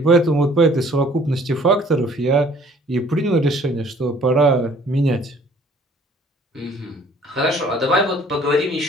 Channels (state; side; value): normal; both; correlation 0.56